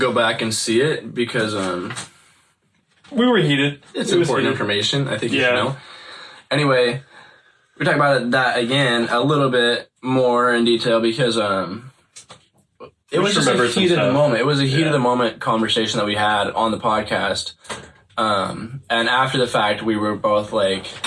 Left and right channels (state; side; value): identical; both; correlation 1.00